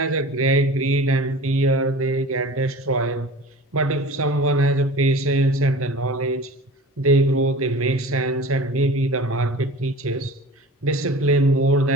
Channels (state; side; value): normal; both; correlation 0.39